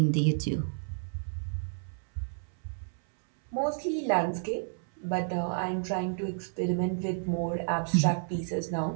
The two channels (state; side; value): silent; left; 57 dB below the other